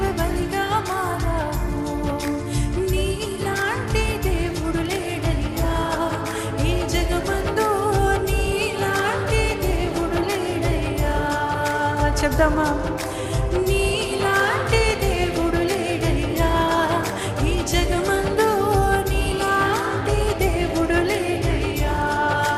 బలిగా మారావు. నీలాంటి దేవుడు లేడయ్యా ఈ జగమందు, నీలాంటి దేవుడు లేడయ్యా. చెప్దామా?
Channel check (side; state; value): both; identical; correlation 1.00